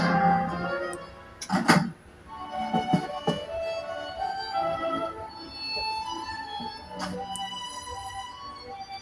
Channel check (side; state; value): both; identical; correlation 1.00